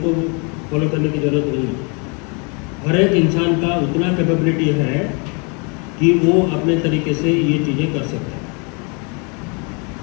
फॉलो करने की जरूरत नहीं है। हर एक इंसान का उतना कैपेबिलिटी है कि वो अपने तरीके से ये चीज़ें कर सकता है।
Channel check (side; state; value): right; quieter; 33.8 dB